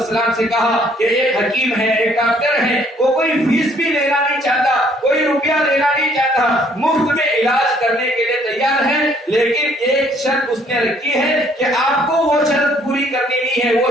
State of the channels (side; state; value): both; normal; correlation 0.63